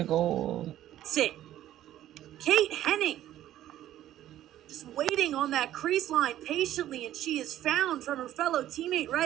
goal. Sit. Kate Henning. Just waiting on that crease line patiently, and she is found from her fellow teammate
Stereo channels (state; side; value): quieter; left; 12.8 dB